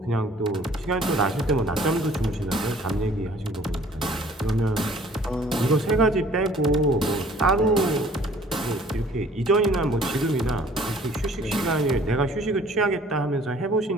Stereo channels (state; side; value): normal; both; correlation 0.54